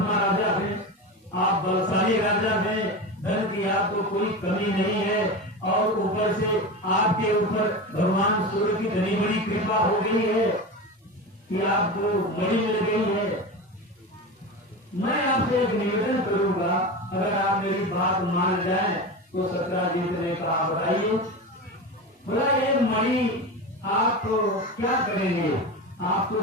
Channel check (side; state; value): both; normal; correlation 0.24